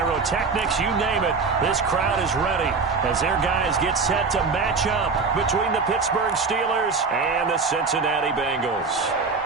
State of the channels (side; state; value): left; quieter; 4.6 dB